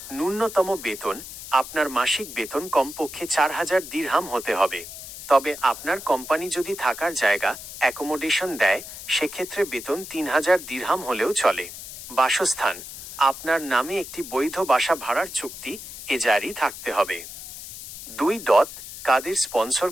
ন্যূনতম বেতন, আপনার মাসিক বেতন কমপক্ষে 4000 দিরহাম হতে হবে। তবে আপনার কোম্পানি যদি থাকার জায়গা, অ্যাকোমোডেশন দেয়, সেক্ষেত্রে বেতন 3000 দিরহাম হলেও চলে। বাসস্থান, আপনার নামে একটি বৈধ বাসা ভাড়ার চুক্তি জারি থাকতে হবে। কাদের স্পন্সর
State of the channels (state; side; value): noise; left; hiss, 12 dB below the sound